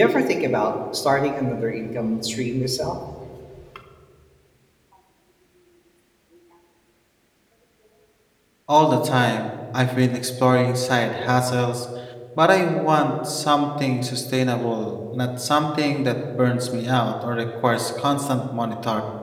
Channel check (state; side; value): identical; both; correlation 1.00